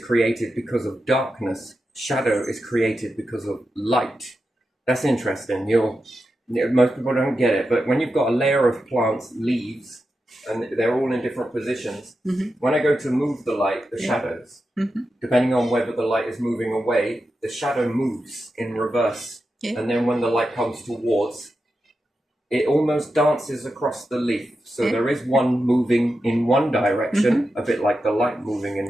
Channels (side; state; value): both; normal; correlation 0.89